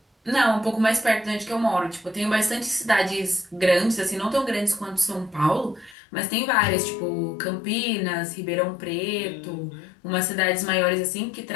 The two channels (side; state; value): right; drops out; at 6.0 s